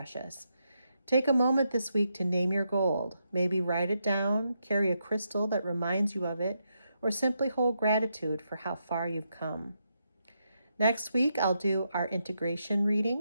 Take a moment this week to name your gold. Maybe write it down, carry a crystal that reminds you of it, or simply hold gratitude for how far you've come. Next week, I'll do our integration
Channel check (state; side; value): inverted; both; correlation -0.82